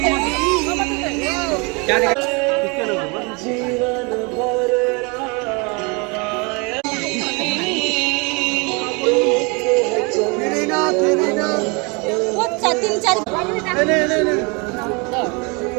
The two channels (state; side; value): quieter; left; 30.3 dB